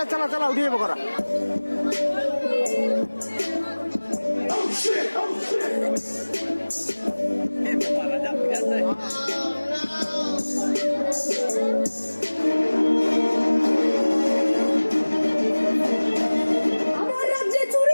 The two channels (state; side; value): inverted; both; correlation -1.00